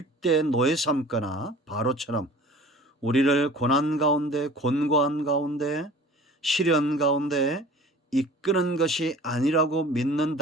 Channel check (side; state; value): both; normal; correlation 0.45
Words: 노예 삼거나 바로처럼 우리를 고난 가운데, 곤고한 가운데, 시련 가운데 이끄는 것이 아니라고